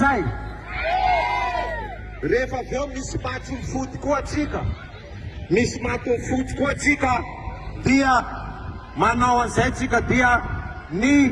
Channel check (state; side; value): identical; both; correlation 1.00